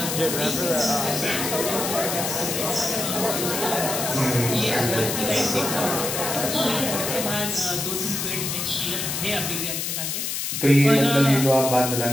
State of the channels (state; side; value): noise; left; hiss, 2 dB below the sound